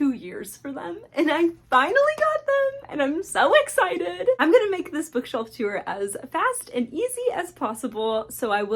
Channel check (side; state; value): both; identical; correlation 1.00